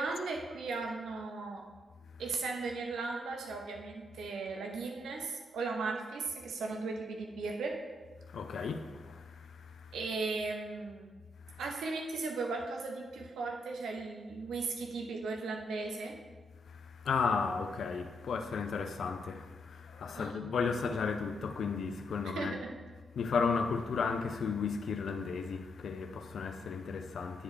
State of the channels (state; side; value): normal; both; correlation 0.77